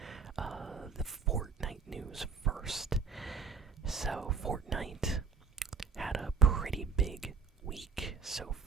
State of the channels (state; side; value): quieter; left; 5.4 dB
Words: the Fortnite news first. So, Fortnite had a pretty big week so